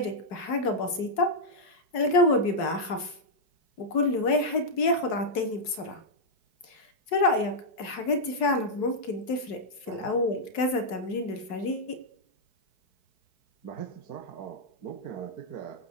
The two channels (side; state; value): right; late; 4.7 ms